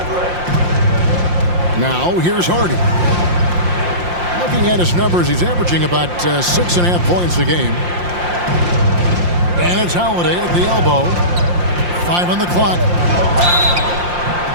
Now, here's Hardy. Looking at his numbers, he's averaging about 6.5 points a game. And it's Holiday at the elbow. 5 on the clock.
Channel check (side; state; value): left; late; 5.7 ms